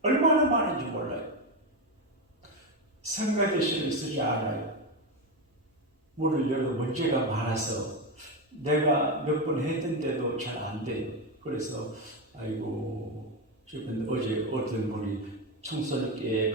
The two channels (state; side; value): normal; both; correlation 0.12